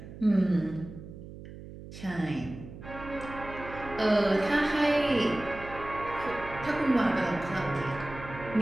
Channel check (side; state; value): right; noise; hum, 14 dB below the sound